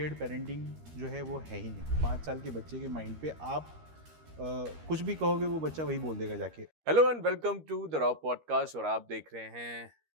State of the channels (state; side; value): late; left; 13 ms